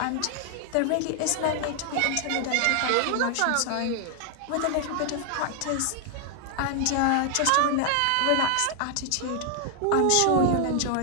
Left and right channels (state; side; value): different; both; correlation 0.00